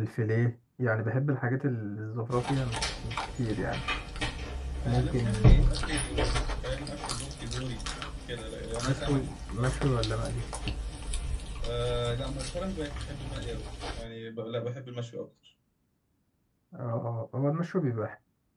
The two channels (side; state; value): both; identical; correlation 1.00